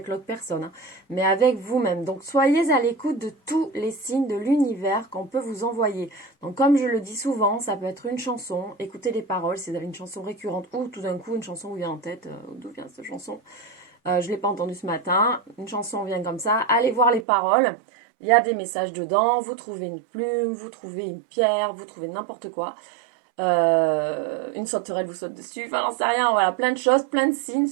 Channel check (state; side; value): drops out; left; at 17.2 s